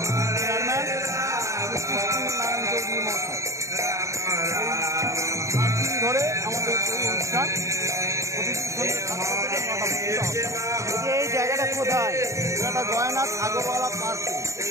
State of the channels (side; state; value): left; late; 0.15 ms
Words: চেয়ারম্যান নারায়ণ চৌধুরী মহাশয়। 7 দিন ধরে আমাদের এই অনুষ্ঠান এই জায়গাটা কোথায়? এটা জয়নাথ আগরওয়ালা পার্কে